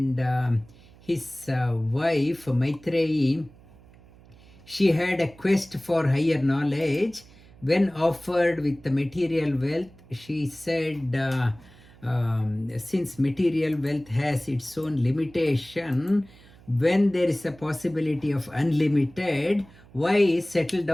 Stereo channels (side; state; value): right; noise; hum, 24 dB below the sound